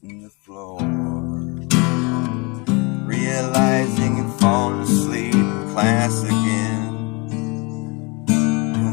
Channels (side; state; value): right; quieter; 29.0 dB